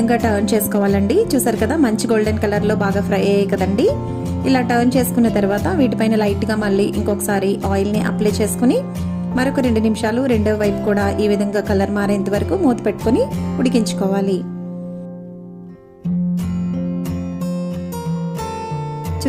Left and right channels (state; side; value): identical; both; correlation 1.00